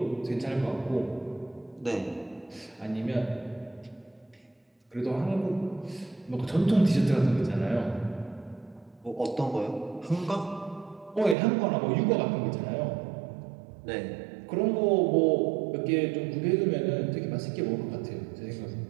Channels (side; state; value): left; drops out; at 11.4 s